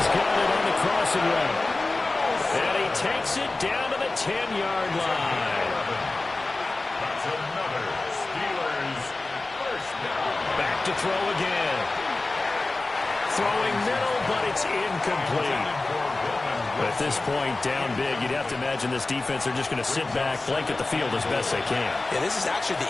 got it on the crossing route. And he takes it down to the 10-yard line. That's another Steelers first down. Back to throw again. Throwing middle, but it's incomplete. At this point, down big, you'd have to imagine this defense are just going to sit back, blanket the field as best they can. Yeah, this is actually the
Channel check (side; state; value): right; quieter; 3.2 dB